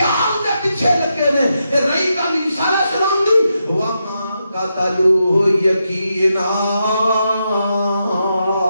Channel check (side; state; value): both; inverted; correlation -0.84